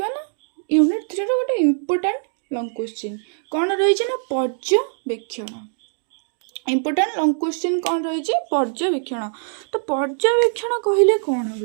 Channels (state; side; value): silent; left; digital silence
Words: ना यूनिट 3 रो गोटे इंपोर्टेंट लॉन्ग क्वेश्चन कौन रही ना पर्यवेक्षण इंपोर्टेंट लॉन्ग क्वेश्चन कौन रही पर्यवेक्षण। तो पर्यवेक्षण कहले कौन